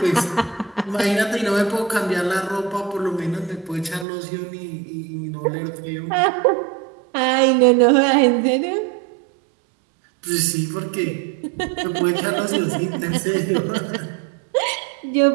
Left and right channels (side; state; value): left; drops out; at 4.0 s